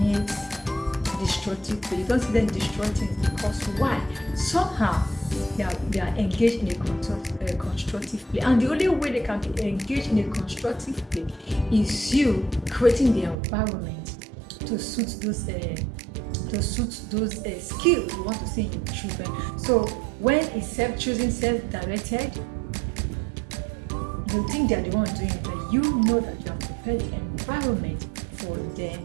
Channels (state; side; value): drops out; left; at 13.4 s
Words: destructive play. You don't see them destroy things because why? Somehow they are engaged in a constructive play, and the only way they can be engaged in a constructive play is you creating the environment to suit to suit those skills you want to see in your children. So when it's self-choosing, self-directed, you think they're the one doing it, but you know that you have prepared the environment for them